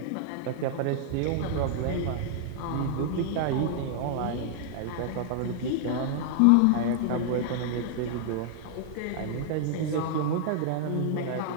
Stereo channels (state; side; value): different; both; correlation -0.01